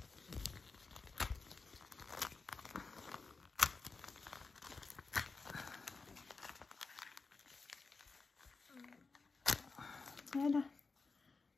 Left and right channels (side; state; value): right; quieter; 4.2 dB